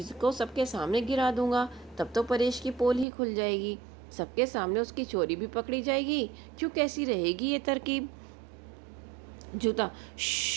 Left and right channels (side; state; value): left; drops out; at 3.1 s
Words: को सबके सामने गिरा दूंगा। तब तो परेश की पोल ही खुल जाएगी, सबके सामने उसकी चोरी भी पकड़ी जाएगी। क्यों, कैसी रहेगी ये तरकीब? जूता।